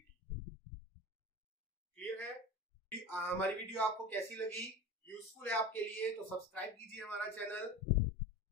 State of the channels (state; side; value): normal; both; correlation 0.31